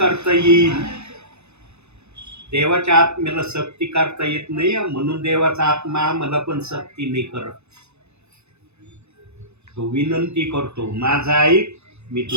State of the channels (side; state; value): left; late; 0.81 ms